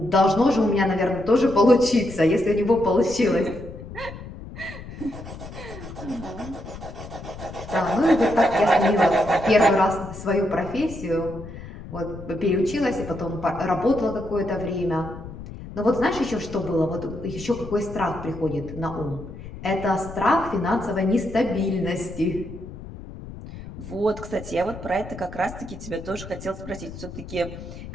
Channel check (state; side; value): noise; left; rumble, 12 dB below the sound